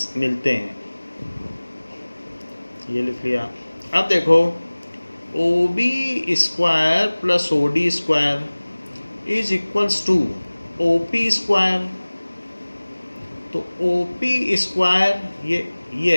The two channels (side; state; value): both; inverted; correlation -1.00